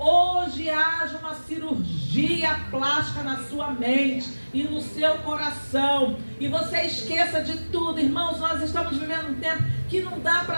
haja uma cirurgia plástica na sua mente e no seu coração. E você esqueça de tudo. Irmãos, nós estamos vivendo um tempo que não dá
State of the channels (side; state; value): both; inverted; correlation -1.00